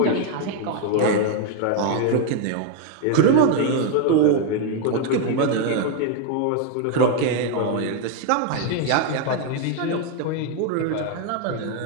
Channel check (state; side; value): different; both; correlation 0.01